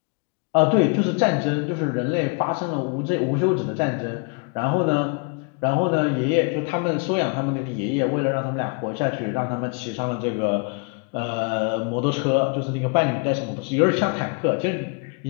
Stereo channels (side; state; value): right; quieter; 33.7 dB